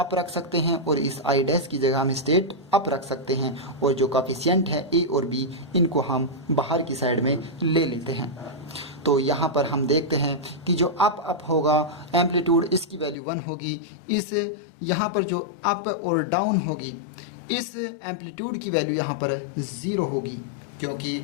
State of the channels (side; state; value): right; drops out; at 13.2 s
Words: रख सकते हैं और इस आई डैश की जगह हम स्टेट अप रख सकते हैं, और जो कोफिशिएंट है ए और बी इनको हम बाहर की साइड में ले लेते हैं। तो यहाँ पर हम देखते हैं कि जो अप होगा एम्पलीट्यूड इसकी वैल्यू 1 होगी, इस यहाँ पर जो अप और डाउन होगी इस एम्पलीट्यूड की वैल्यू यहाँ पर 0 होगी, क्योंकि